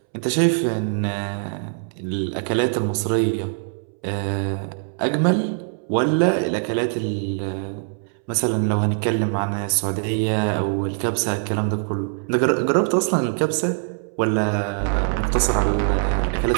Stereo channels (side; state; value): left; silent; 64 dB below the other